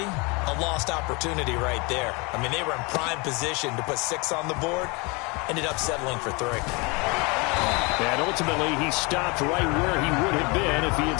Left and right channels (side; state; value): right; quieter; 28.4 dB